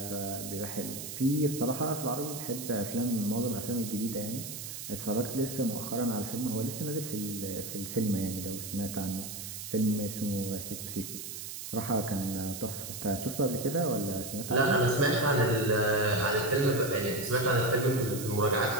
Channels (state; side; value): noise; right; hiss, 8 dB below the sound